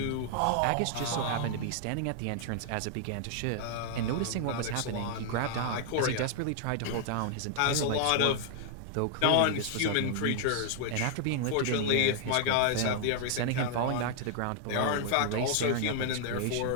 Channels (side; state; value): both; different; correlation 0.00